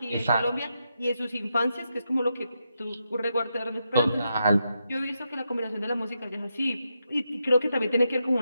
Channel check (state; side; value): inverted; both; correlation -0.84